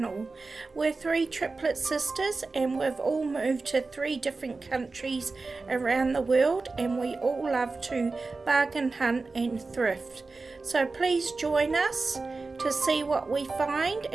We're three triplet sisters and we've all moved to 3 different countries around the world, and we all love to bargain hunt and thrift. So please join us to see what we find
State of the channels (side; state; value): left; quieter; 3.8 dB